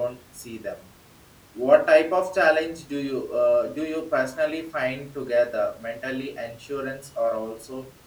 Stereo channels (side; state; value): both; identical; correlation 1.00